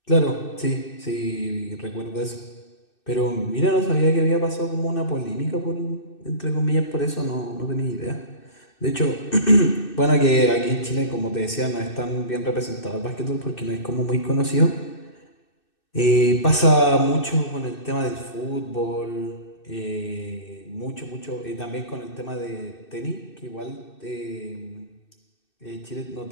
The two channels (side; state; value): right; late; 2.6 ms